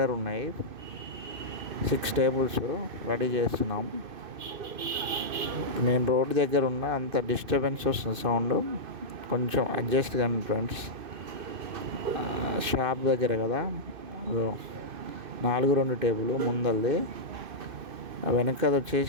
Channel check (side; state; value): left; late; 2.5 ms